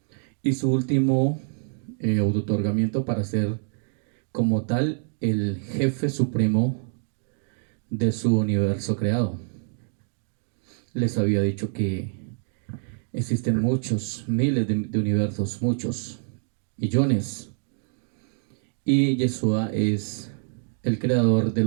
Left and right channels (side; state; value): left; silent; digital silence